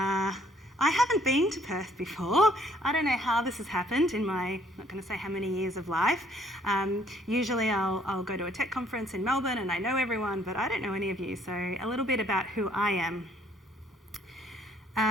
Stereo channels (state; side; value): normal; both; correlation 0.62